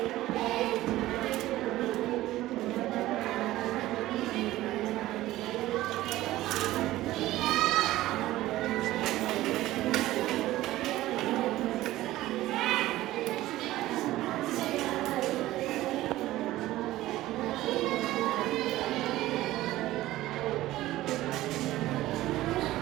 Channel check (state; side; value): quieter; left; 16.1 dB